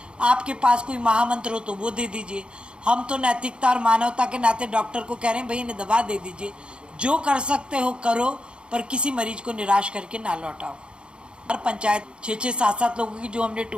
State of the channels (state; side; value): late; left; 0.054 ms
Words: आपके पास कोई महामंत्र हो तो वो दे दीजिए। हम तो नैतिकता और मानवता के नाते डॉक्टर को कह रहे हैं भाई इन्हें दवा दे दीजिए। जो कर सकते हो करो, पर किसी मरीज को निराश करके ना लौटाओ। हर पंचायत 6-6, 7-7 लोगों की जो हमने